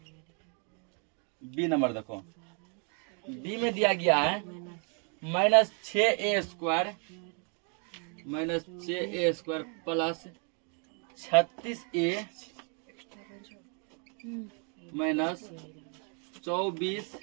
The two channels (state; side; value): quieter; left; 39.6 dB